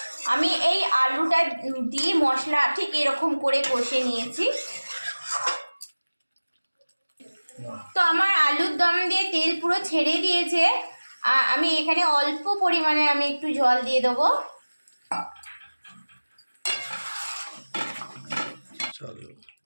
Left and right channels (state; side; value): inverted; both; correlation -1.00